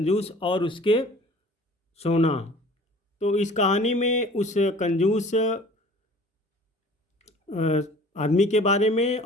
और उसके सोना। तो इस कहानी में उस कंजूस आदमी के बारे में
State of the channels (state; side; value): normal; both; correlation 0.47